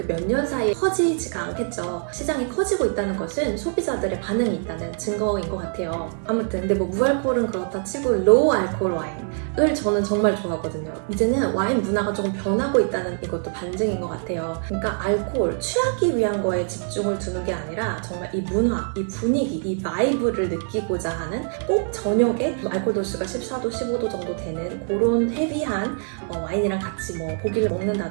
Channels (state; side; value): silent; left; 55 dB below the other